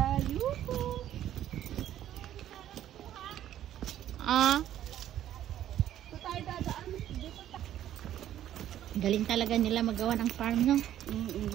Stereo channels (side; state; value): left; quieter; 11.8 dB